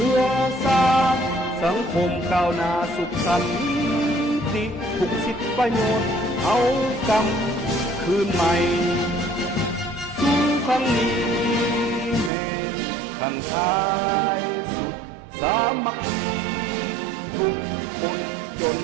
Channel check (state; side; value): drops out; left; at 12.3 s